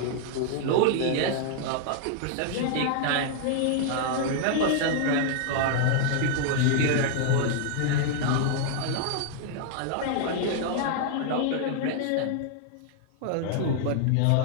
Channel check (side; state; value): both; different; correlation 0.00